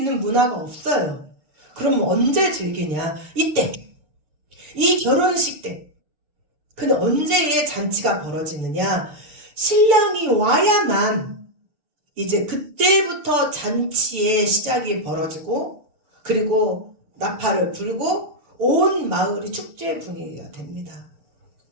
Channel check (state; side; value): late; left; 7.0 ms